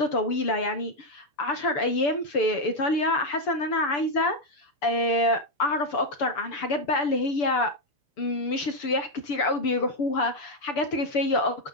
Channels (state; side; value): late; right; 6.9 ms